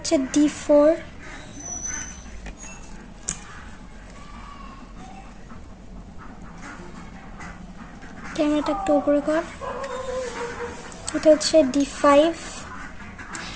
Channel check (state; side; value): identical; both; correlation 1.00